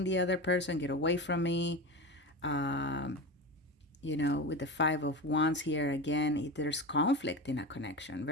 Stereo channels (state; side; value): normal; both; correlation 0.25